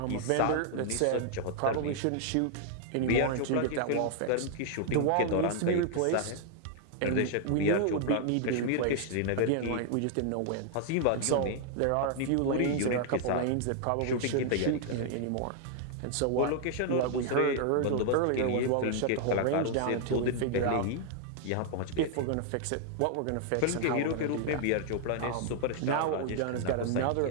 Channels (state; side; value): different; both; correlation 0.00